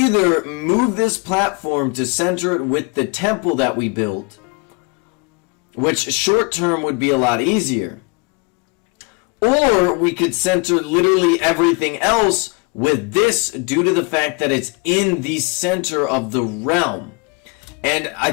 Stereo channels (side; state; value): right; quieter; 30.9 dB